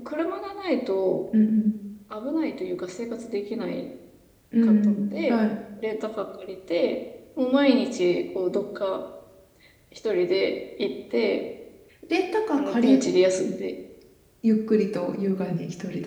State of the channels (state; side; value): identical; both; correlation 1.00